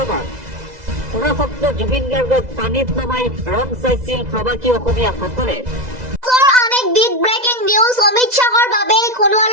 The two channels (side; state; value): left; late; 2.0 ms